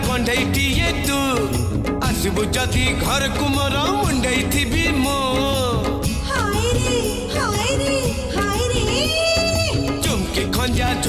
कंढईटिए तू आसबु जदि घर को मोर मुंडई थी मो हाय रे चुमकी खंजा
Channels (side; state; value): both; identical; correlation 1.00